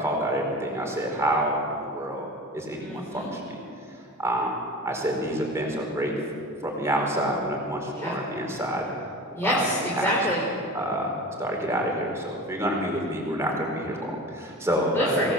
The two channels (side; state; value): both; normal; correlation 0.34